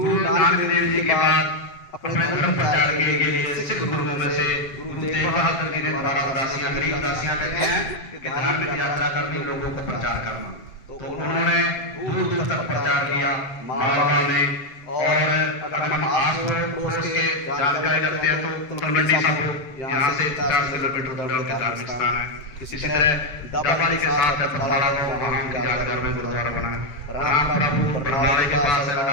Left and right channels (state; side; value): late; right; 7.5 ms